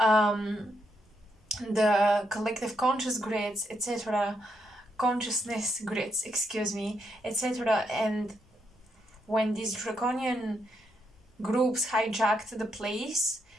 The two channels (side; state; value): both; normal; correlation 0.79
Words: collective conscious grids, etc., consciousness grids, excuse me, etc. And when these draconian groups hijacked the place,